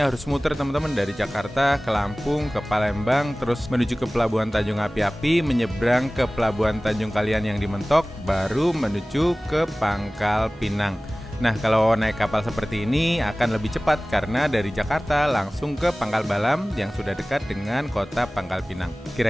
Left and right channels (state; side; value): normal; both; correlation 0.98